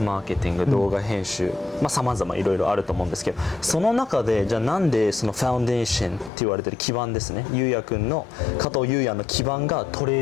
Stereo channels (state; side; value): drops out; right; at 6.3 s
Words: マーケティング、動画編集、さまざまいろいろあると思うんですけど、その中でじゃあなんでそのファウンデーションって言われてる基盤ですね、ゆうやくんの加藤ゆうやの基盤がトレ